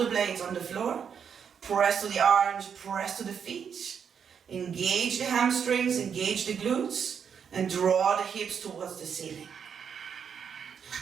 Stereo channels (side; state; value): left; quieter; 7.3 dB